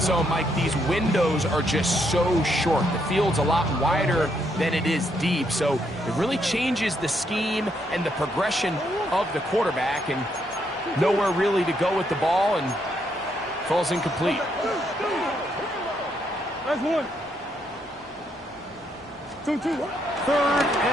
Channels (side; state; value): both; normal; correlation 0.75